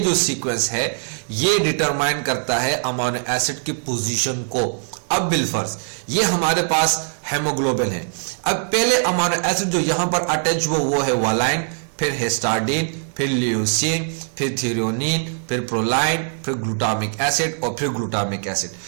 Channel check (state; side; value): silent; left; digital silence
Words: सीक्वेंस है ये डिटरमाइन करता है अमाइनो एसिड की पोजीशन को. अब बिलफर्ज ये हमारे पास हेमोग्लोबिन है. अब पहले अमाइनो एसिड जो यहां पर अटैच हुआ वो है वालाइन, फिर हिस्टाडीन, फिर ल्यूसीन, फिर थ्रेओनीन, फिर प्रोलाइन, फिर ग्लूटामिक एसिड और फिर ग्लूटामिक एसिड.